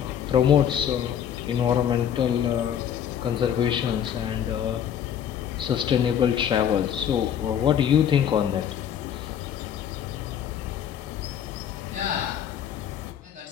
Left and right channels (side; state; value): right; quieter; 9.1 dB